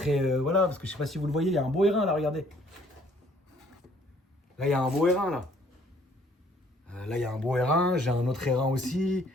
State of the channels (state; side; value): normal; both; correlation 0.61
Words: Voilà, parce que je sais pas si vous le voyez, il y a un beau R1 là, regardez. Là, il y a un beau R1 là. Là, il y a un beau R1, j'ai un autre R1 aussi.